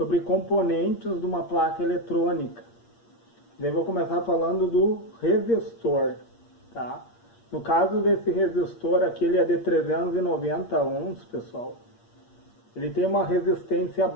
componentes de uma placa eletrônica. Daí vou começar falando do resistor, tá? No caso desse resistor aqui, ele é de 390 ohms, pessoal. Ele tem uma resistência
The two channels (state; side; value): late; right; 8.6 ms